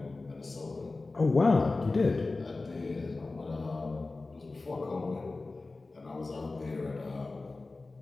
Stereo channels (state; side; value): quieter; right; 3.5 dB